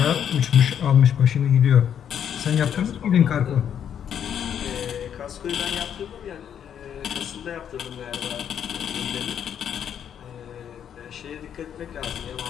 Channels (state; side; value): quieter; right; 8.9 dB